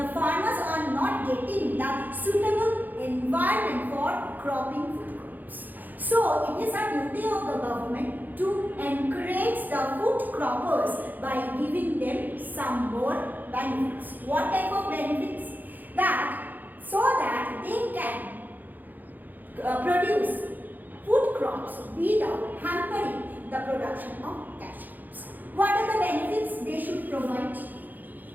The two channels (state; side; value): late; left; 0.085 ms